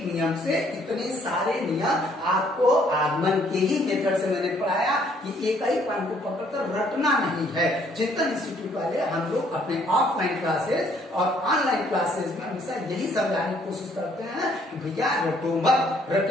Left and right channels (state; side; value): normal; both; correlation 0.64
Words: नियम से इतने सारे नियम आपको आगमन के ही मेथड से मैंने पढ़ाया कि एक ही पॉइंट को पकड़कर रटना नहीं है। चिंतन इंस्टीट्यूट वाले हम लोग अपने ऑफलाइन क्लासेस और ऑनलाइन क्लासेस में हमेशा यही समझाने की कोशिश करते हैं कि भैया रटो मत,